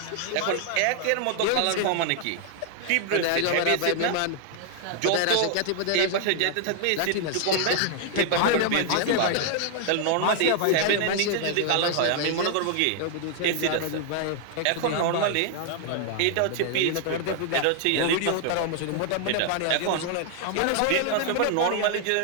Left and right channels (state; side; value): different; both; correlation 0.00